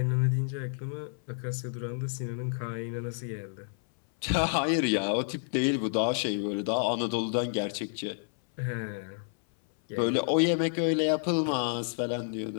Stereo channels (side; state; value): right; silent; 58 dB below the other